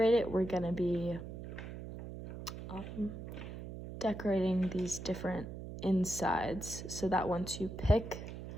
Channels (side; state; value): right; noise; hum, 9 dB below the sound